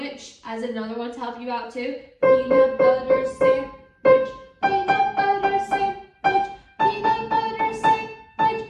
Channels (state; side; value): identical; both; correlation 1.00